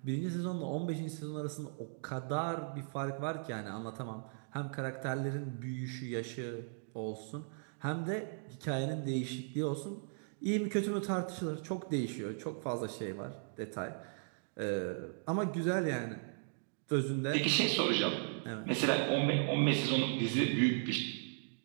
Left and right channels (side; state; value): left; silent; digital silence